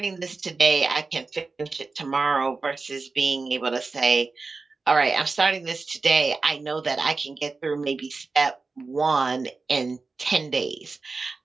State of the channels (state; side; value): quieter; left; 4.0 dB